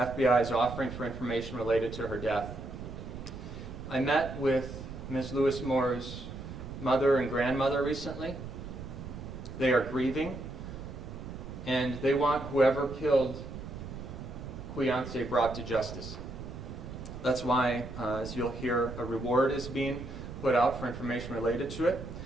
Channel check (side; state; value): right; noise; rumble, 10 dB below the sound